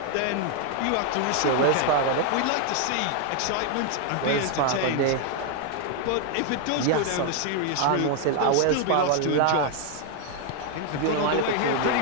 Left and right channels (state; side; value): different; both; correlation 0.00